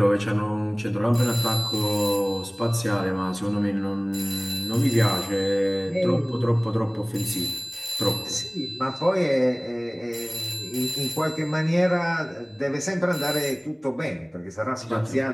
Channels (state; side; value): identical; both; correlation 1.00